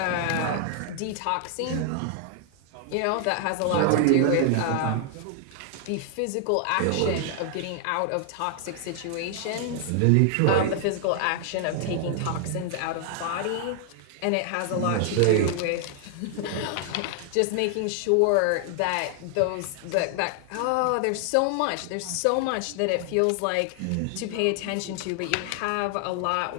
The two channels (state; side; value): different; both; correlation 0.00